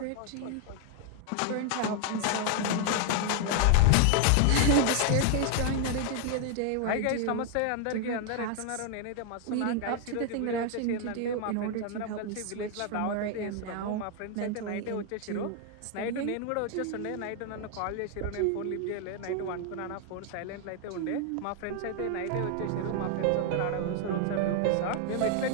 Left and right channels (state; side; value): different; both; correlation 0.00